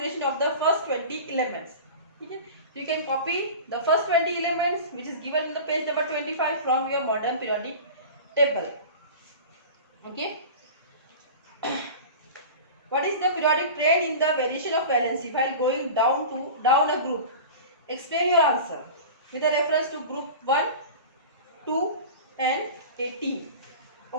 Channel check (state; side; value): inverted; both; correlation -0.35